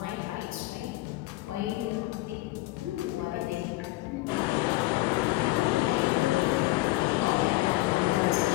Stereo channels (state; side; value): quieter; right; 19.3 dB